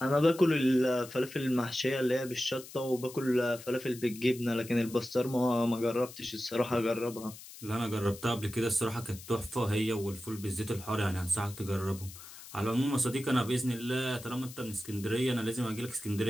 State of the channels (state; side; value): noise; left; hiss, 16 dB below the sound